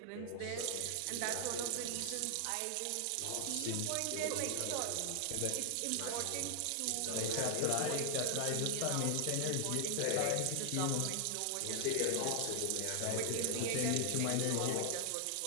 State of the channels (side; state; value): both; different; correlation 0.00